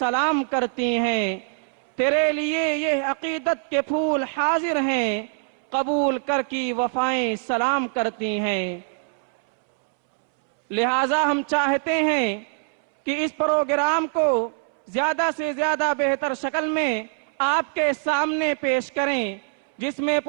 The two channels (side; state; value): left; silent; 63 dB below the other